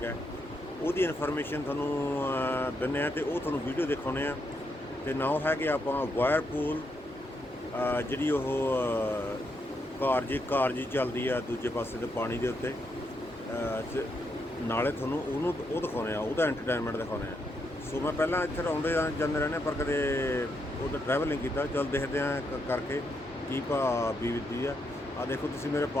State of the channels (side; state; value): both; normal; correlation 0.80